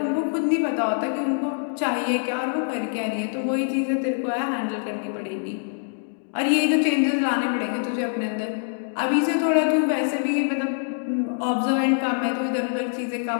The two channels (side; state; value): right; silent; digital silence